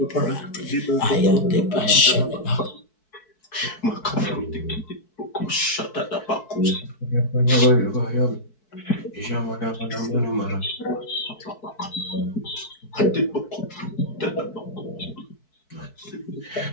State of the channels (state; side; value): late; right; 4.6 ms